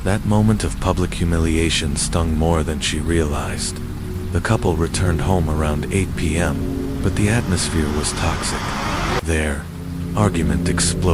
That moment of public humiliation stung more than she realized. The couple returned home around 8 p.m., but the atmosphere was toxic. Their argument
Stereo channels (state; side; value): identical; both; correlation 1.00